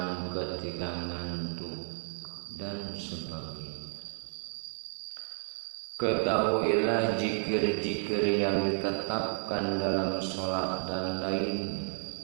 ketika ngantuk dan sebagainya. Ketahuilah zikir-zikir yang ditetapkan dalam sholat dan lainnya,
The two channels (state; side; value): silent; left; 56 dB below the other